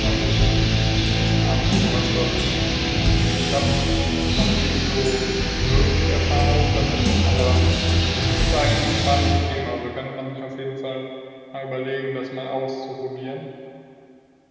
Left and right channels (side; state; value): both; identical; correlation 1.00